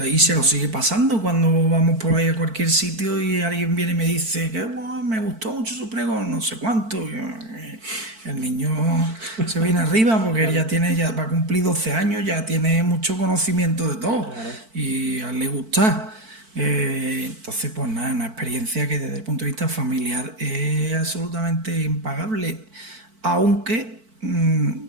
Y se lo sigue pasando cuando vamos por ahí a cualquier sitio y alguien viene y me dice que me gustó mucho su pregón, no sé cuánto. El niño se viene arriba porque él ya va a cumplir 12 años, ya tiene mucho conocimiento de todo y a él le gusta. Entonces, pues nada, una experiencia que desde el punto de vista familiar es absolutamente impagable, aunque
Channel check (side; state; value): left; late; 4.5 ms